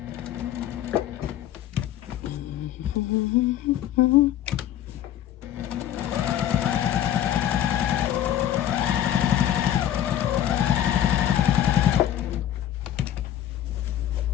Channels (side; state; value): right; quieter; 11.4 dB